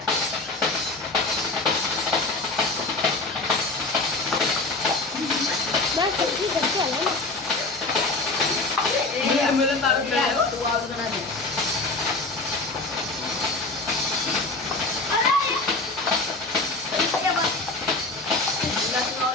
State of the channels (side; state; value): right; quieter; 3.3 dB